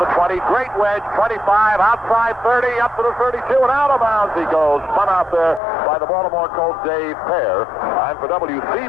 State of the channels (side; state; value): right; drops out; at 5.6 s